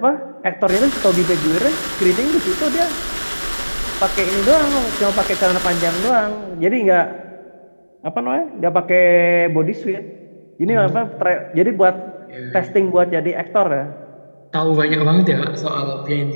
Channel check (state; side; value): inverted; both; correlation -1.00